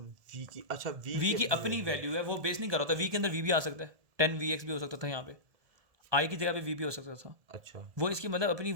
V की, अच्छा V की अपनी वैल्यू है, वो बेस नहीं कर रहा था। V के अंदर V भी आ सकता है, 10VX भी हो सकता था, यहाँ पे I की जगह पे V भी हो सकता था। अच्छा, वो इसकी मतलब अपनी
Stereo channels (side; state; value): left; late; 1.7 ms